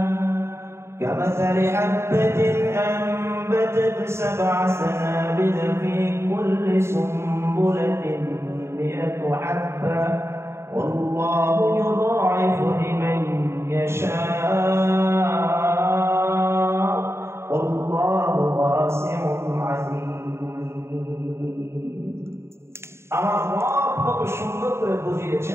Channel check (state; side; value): late; left; 0.13 ms